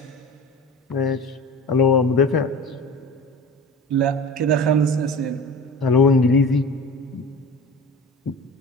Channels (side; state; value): both; normal; correlation 0.35